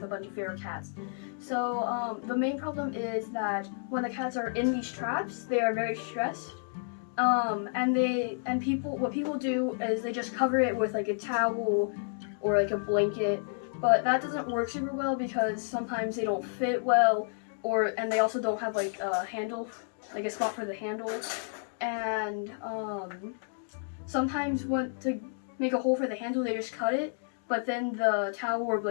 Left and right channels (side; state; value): right; silent; digital silence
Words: a bunch of feral cats. So the main problem is that when the cats are in these traps, they are very stressed. What people do is they just cover it with like a towel or like a blanket, but that doesn't work super well because sometimes they don't fit well, and they also don't have like a handle, like a spot for the handle, and sometimes to make a hole for the handle they just cut it, but then the towel or